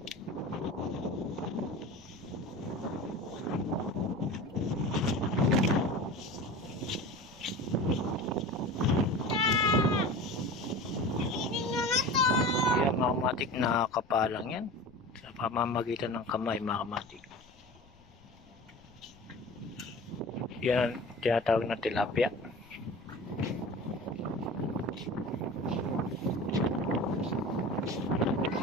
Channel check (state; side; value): noise; left; rumble, 26 dB below the sound